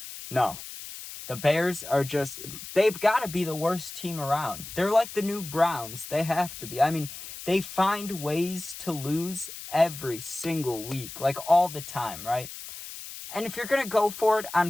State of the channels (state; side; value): noise; left; hiss, 12 dB below the sound